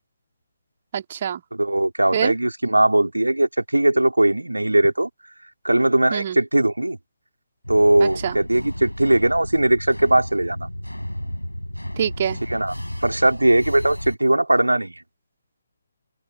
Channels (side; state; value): both; inverted; correlation -0.99